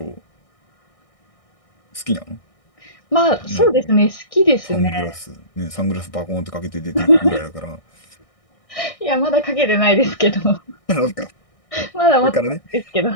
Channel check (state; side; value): late; right; 1.6 ms